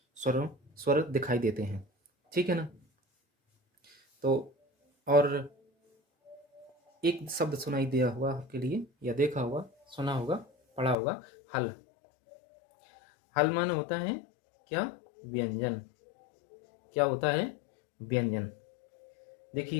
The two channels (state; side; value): drops out; right; at 11.0 s